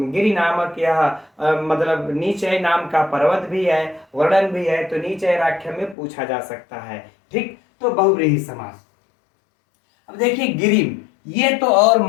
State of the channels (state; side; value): drops out; right; at 6.0 s